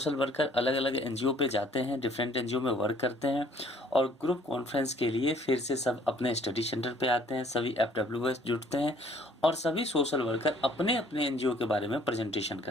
वर्कर अलग अलग NGO पे जाते हैं, डिफरेंट NGO में वर्क करते हैं, और ग्रुप कॉन्फ्रेंस के लिए फिर से सब अपने स्टडी सेंटर पे आते हैं, सभी FWS जुटते हैं और सभी सोशल वर्कर अपने अपने NGO के बारे में प्रेजेंटेशन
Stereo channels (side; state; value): both; normal; correlation 0.58